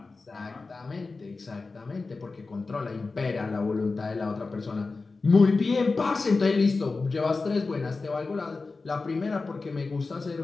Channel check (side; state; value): right; quieter; 3.9 dB